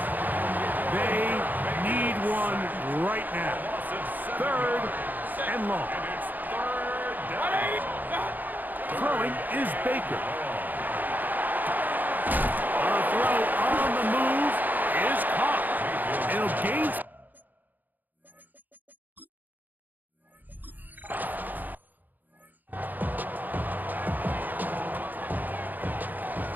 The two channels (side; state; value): left; late; 0.085 ms